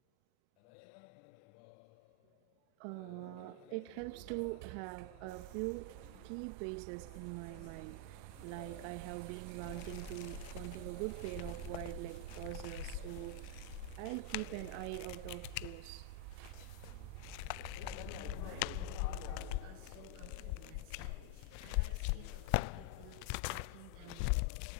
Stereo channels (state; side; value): different; both; correlation 0.00